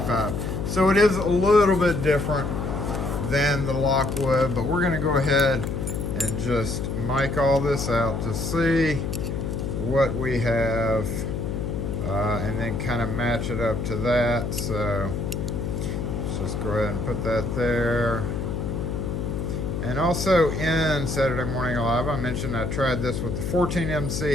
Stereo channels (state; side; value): noise; left; hum, 3 dB below the sound